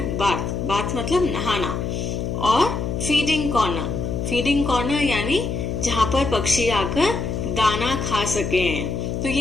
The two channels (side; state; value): left; noise; hum, 3 dB below the sound